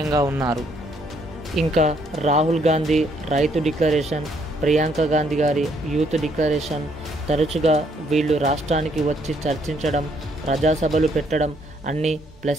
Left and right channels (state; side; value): normal; both; correlation 0.69